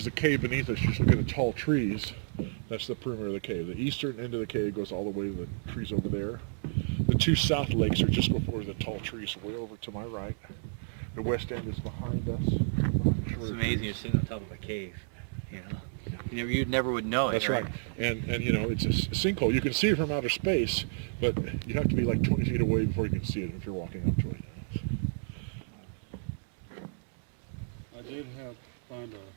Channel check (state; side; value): silent; left; digital silence